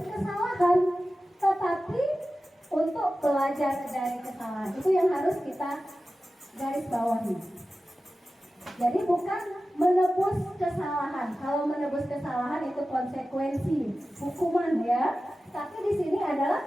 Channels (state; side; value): normal; both; correlation 0.94